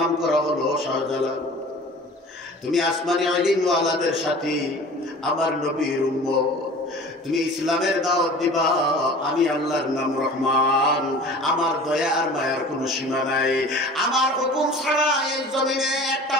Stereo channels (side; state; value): both; normal; correlation 0.42